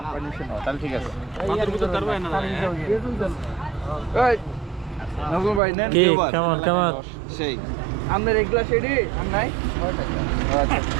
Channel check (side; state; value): left; drops out; at 5.6 s